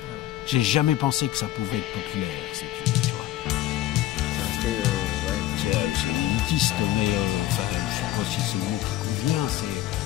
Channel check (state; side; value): quieter; right; 14.2 dB